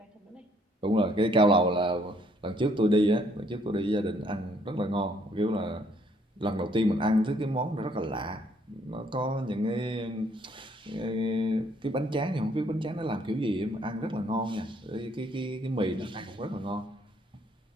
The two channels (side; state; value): both; normal; correlation 0.66